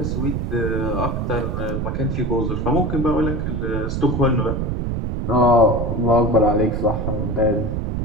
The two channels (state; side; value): noise; right; rumble, 1 dB below the sound